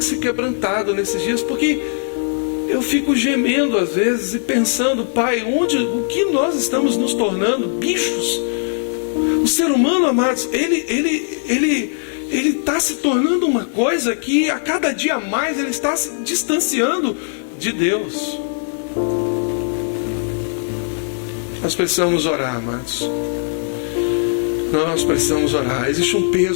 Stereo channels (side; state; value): right; silent; 66 dB below the other